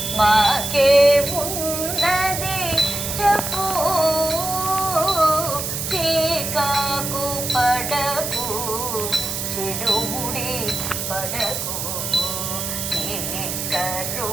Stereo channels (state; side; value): noise; right; hiss, 3 dB below the sound